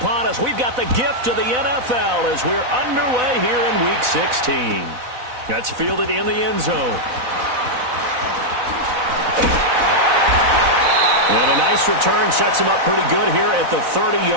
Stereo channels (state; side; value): late; left; 4.0 ms